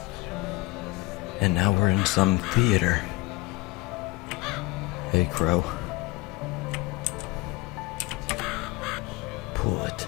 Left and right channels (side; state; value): right; quieter; 20.8 dB